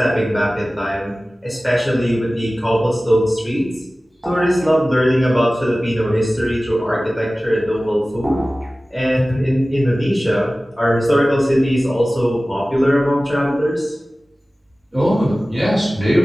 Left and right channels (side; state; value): both; normal; correlation 0.97